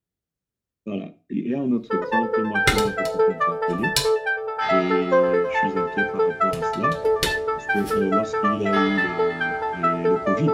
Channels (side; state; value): both; identical; correlation 1.00